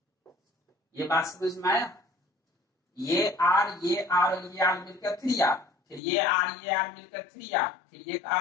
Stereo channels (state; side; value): drops out; right; at 6.0 s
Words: ये बात समझ में आया? ये R और ये R मिलकर 3R, फिर ये R मिलकर 3R, फिर ये R